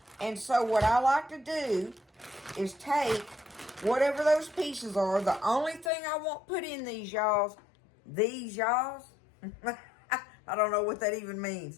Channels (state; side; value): drops out; right; at 5.9 s